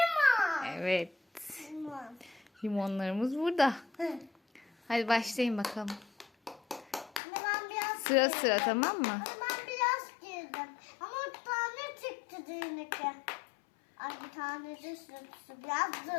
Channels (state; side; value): drops out; right; at 7.2 s